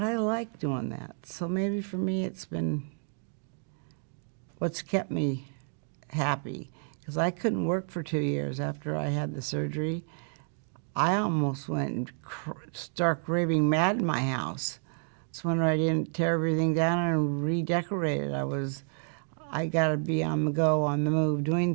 like doing that. So maybe for me it's been what's kept me happy. Because I couldn't work for 2 years after I had the surgery. I almost went stark raving mad in my house. It's when I didn't tear everything down and redecorate it. I got to be on the go, on the move, doing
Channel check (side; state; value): left; silent; 58 dB below the other